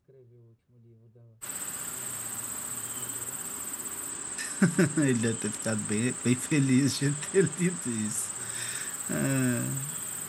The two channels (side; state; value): both; identical; correlation 1.00